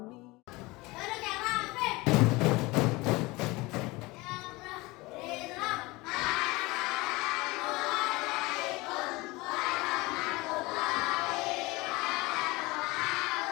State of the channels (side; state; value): right; quieter; 22.6 dB